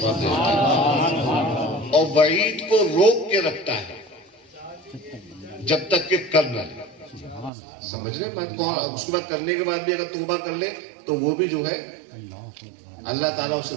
دے دیتا ہے. اور وعید کو روک کے رکھتا ہے جب تک کہ کر نہ لے. سمجھ رہے بات کو. اس کے بعد کرنے کے بعد بھی اگر توبہ کر لے تو وہ بھی جو ہے اللہ تعالیٰ اسے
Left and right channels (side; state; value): left; drops out; at 7.5 s